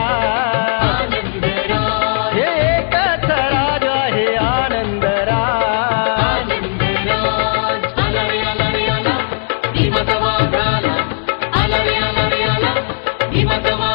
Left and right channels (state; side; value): silent; right; digital silence